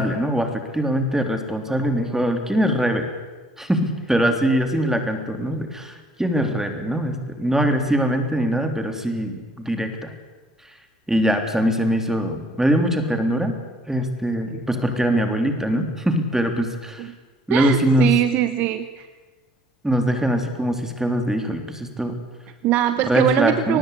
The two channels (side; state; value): both; normal; correlation 0.62